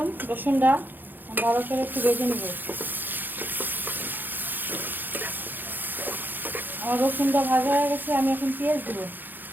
রসুনটা ভালো করে একটু ভেজে নেব। আমার রসুনটা ভাজা হয়ে গেছে। আমি এখন পেঁয়াজ দেবো।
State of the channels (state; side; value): late; left; 0.089 ms